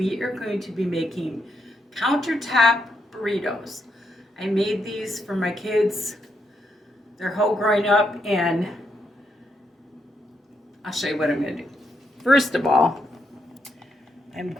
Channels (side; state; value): both; normal; correlation 0.79